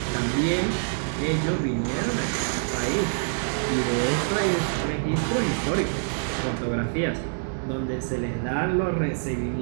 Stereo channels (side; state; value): left; silent; digital silence